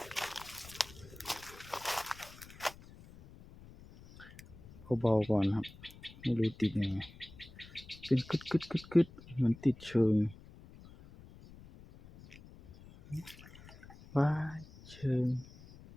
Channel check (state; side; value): noise; left; rumble, 19 dB below the sound